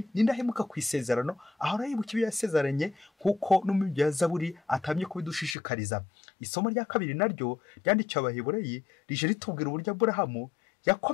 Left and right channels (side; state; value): right; drops out; at 5.6 s